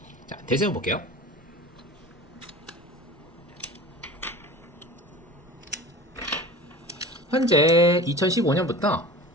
자, 대세운 볼게요. 현재 2015년부터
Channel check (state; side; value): normal; both; correlation 0.37